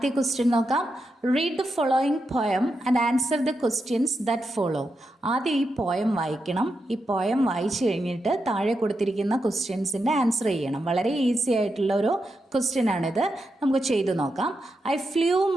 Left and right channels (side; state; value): both; normal; correlation 0.86